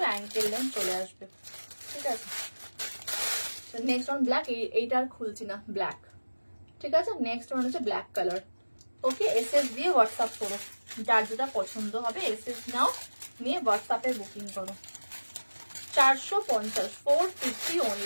অ্যাঙ্কেল লেন্থ চলে আসবে। ঠিক আছে, নেক্সট ওয়ান ব্ল্যাক। এইটা আর খুলছি না, ব্ল্যাক। ঠিক আছে, নেক্সট ওয়ান হচ্ছে ব্ল্যাক কালার। ওকে, এসএস দিয়ে হোয়াটসঅ্যাপ করো, যার যেটা পছন্দ হবে এসএস নাও, নিয়ে হোয়াটসঅ্যাপে বুকিং করো। 450, 450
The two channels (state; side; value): inverted; both; correlation -1.00